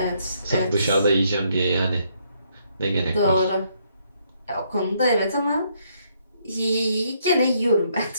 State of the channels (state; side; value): inverted; both; correlation -0.71